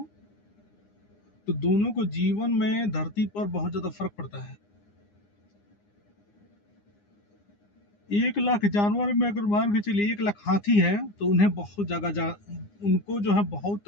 तो दोनों को जीवन में धरती पर बहुत ज्यादा फर्क पड़ता है। 1 लाख जानवर में अगर मान के चलिए 1 लाख हाथी है तो उन्हें बहुत उनको जो है बहुत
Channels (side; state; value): right; late; 9.8 ms